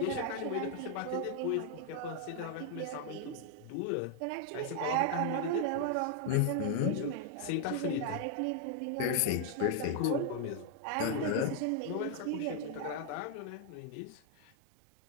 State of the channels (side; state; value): both; different; correlation 0.00